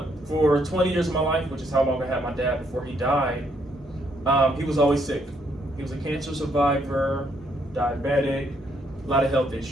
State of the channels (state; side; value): normal; both; correlation 0.72